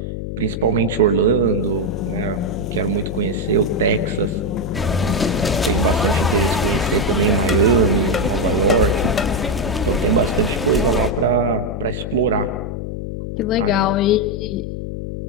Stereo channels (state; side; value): noise; left; hum, 6 dB below the sound